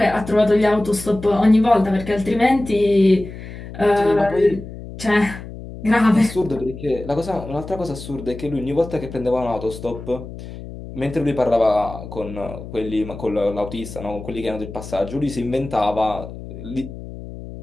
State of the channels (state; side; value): noise; left; hum, 12 dB below the sound